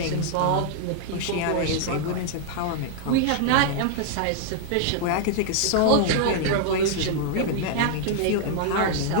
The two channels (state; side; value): different; both; correlation 0.00